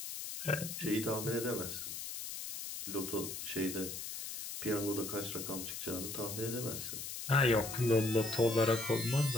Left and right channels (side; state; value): left; noise; hiss, 7 dB below the sound